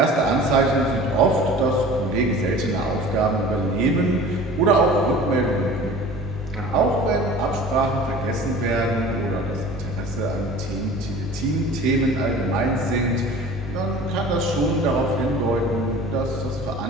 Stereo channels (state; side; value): normal; both; correlation 0.42